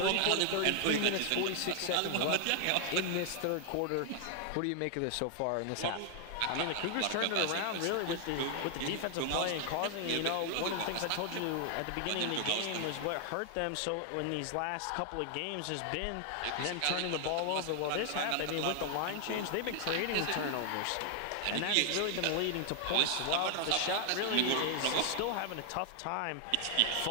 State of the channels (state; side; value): different; both; correlation 0.00